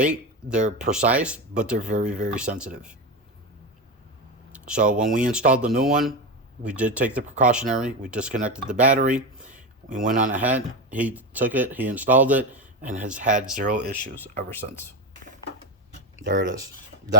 they're precise, but they're very, very sensitive. So when we installed the new one, we did take the precautionary, we disconnected the battery, we went on ahead, he took it, he installed it, and has had zero issues ever since. There it is.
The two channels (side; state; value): both; normal; correlation 0.17